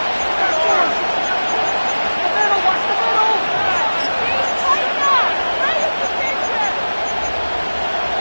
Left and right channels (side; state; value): both; inverted; correlation -1.00